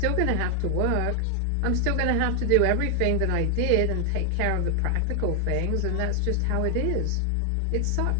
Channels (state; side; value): different; both; correlation 0.00